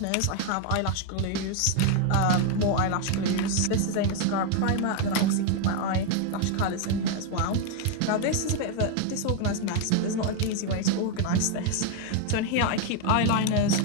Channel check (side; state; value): both; different; correlation 0.01